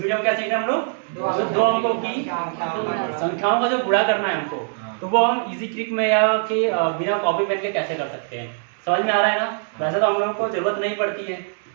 में क्या सीख रहे हैं हम लोग, दो अंकों की संख्याओं का जो गुणा करना है हमको, तो वो हम इजी ट्रिक में या कि बिना कॉपी पेन के कैसे कर सकते हैं। समझ में आ रहा है ना। वैसे तो हम लोगों को जरूरत नहीं पड़ती है,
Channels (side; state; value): left; silent; 64 dB below the other